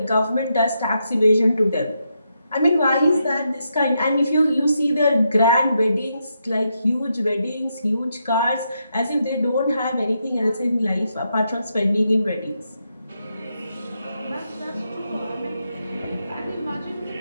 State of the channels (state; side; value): inverted; both; correlation -0.82